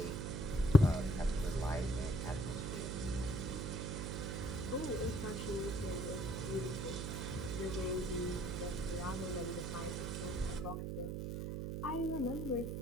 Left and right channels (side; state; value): right; noise; hum, 3 dB below the sound